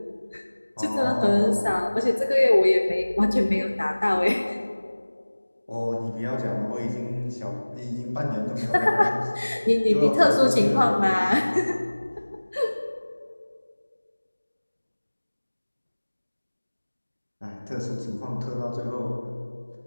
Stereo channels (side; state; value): both; inverted; correlation -1.00